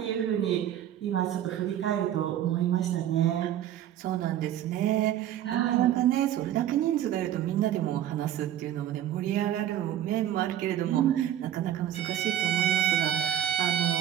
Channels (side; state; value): left; quieter; 11.4 dB